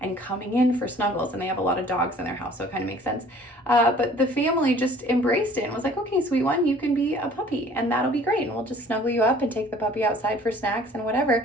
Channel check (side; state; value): both; normal; correlation 0.52